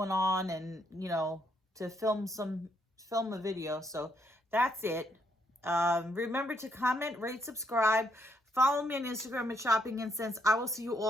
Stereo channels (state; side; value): normal; both; correlation 0.74